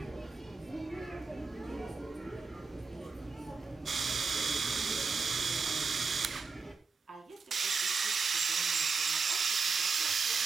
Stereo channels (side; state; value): left; quieter; 4.8 dB